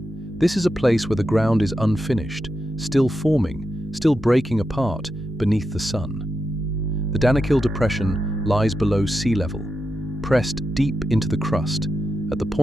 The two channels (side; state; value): both; normal; correlation 0.87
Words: This is a place where the ground is unfinished, still forming, still breaking apart beneath the sun. The Danakil Depression lies below sea level, pressed deep into the crust, at the